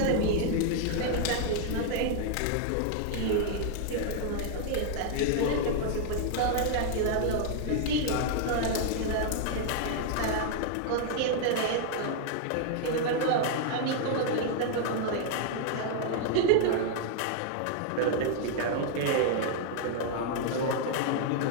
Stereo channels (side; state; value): both; different; correlation -0.01